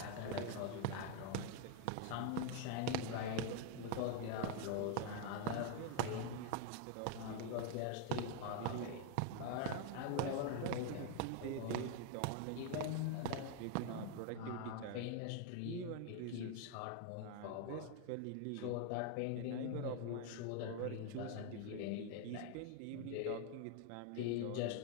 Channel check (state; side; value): different; both; correlation 0.01